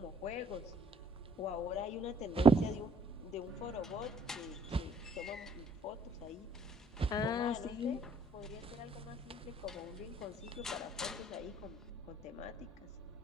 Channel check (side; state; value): both; normal; correlation 0.63